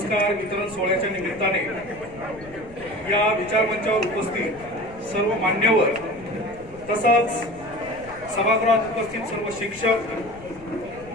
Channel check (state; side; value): noise; left; rumble, 20 dB below the sound